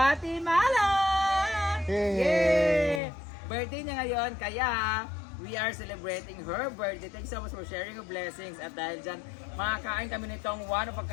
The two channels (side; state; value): right; drops out; at 3.0 s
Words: Yay! Birthday niya ngayon, kaya we are celebrating her birthday. Thanks so much for sharing your blessings. At dahil dyan, makakain kami nitong one of a